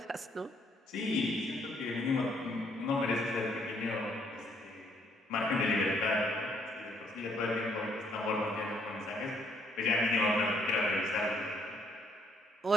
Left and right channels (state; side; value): normal; both; correlation 0.68